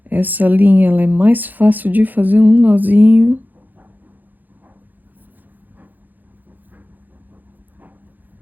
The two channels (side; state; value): left; late; 0.085 ms